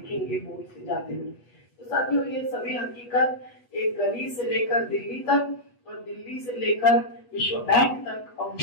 बोट से जाते हुए। तो साथियों, ये सभी हकीकत एक गली से लेकर दिल्ली तक और दिल्ली से लेकर विश्व बैंक तक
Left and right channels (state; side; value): late; right; 8.2 ms